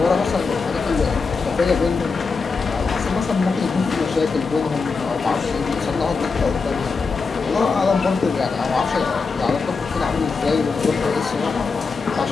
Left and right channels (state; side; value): quieter; right; 4.7 dB